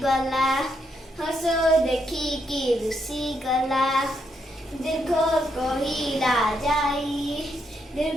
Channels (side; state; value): both; normal; correlation 0.78